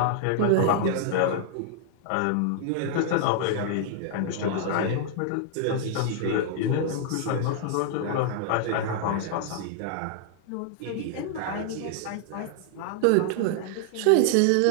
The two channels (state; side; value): different; both; correlation -0.01